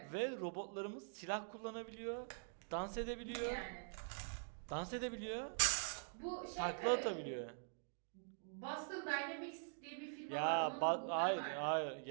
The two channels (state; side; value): silent; left; digital silence